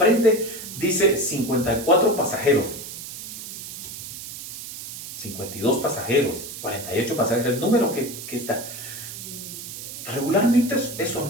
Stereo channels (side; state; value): right; noise; hiss, 10 dB below the sound